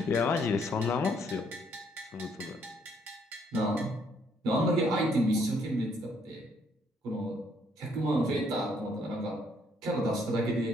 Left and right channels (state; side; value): normal; both; correlation 0.68